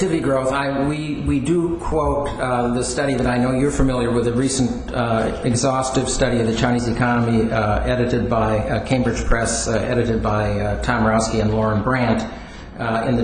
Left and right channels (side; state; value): both; identical; correlation 1.00